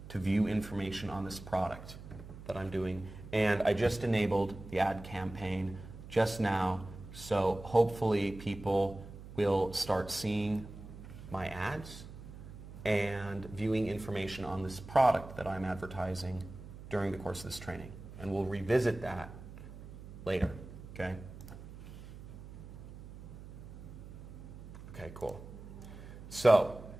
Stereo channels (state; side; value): noise; right; hum, 14 dB below the sound